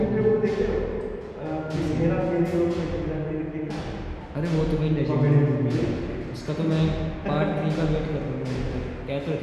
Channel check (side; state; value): both; identical; correlation 1.00